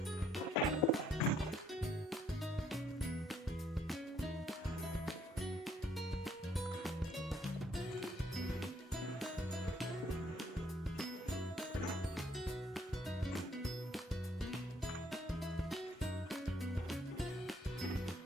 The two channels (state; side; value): normal; both; correlation 0.67